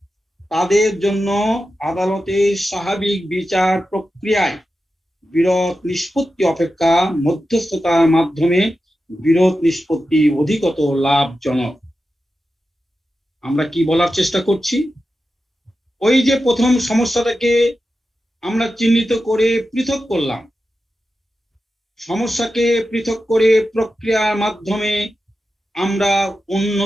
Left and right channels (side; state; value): both; normal; correlation 0.91